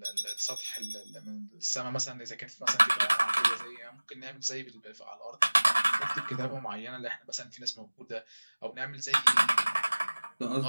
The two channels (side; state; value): both; inverted; correlation -1.00